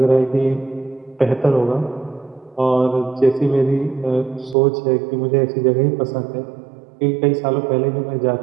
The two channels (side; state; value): left; drops out; at 4.5 s